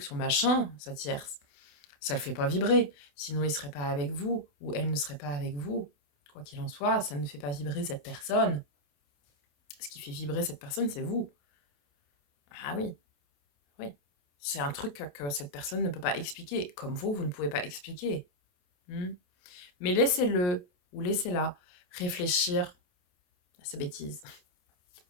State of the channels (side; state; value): right; late; 28 ms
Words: son machin, sa tierce, ça le fait pas vibrer. Sinon, il serait pas avec vous, ou elle ne serait pas avec vous. Quoi qu'il en soit, ça ne fait pas vibrer cette personne. Ce qui fait vibrer cette personne, c'est vous. Ah oui, oui. C'est un truc que cette personne ne peut pas expliquer, comme vous ne pouvez pas expliquer. Hmm. Mais laissez-le, ou laissez-la, réfléchir à ses bêtises.